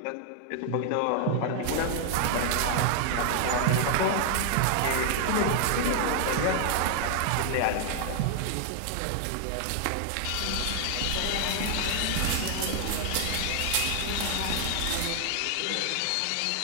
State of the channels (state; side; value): different; both; correlation 0.00